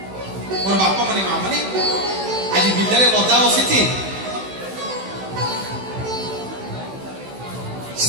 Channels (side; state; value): left; late; 16 ms